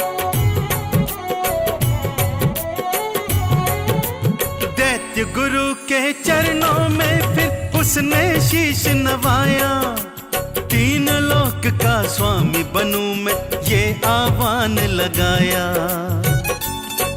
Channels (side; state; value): both; identical; correlation 1.00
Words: दैत्य गुरु के चरणों में फिर उसने शीश नवाया। तीन लोक का स्वामी बनूं मैं ये आह्वान लगाया।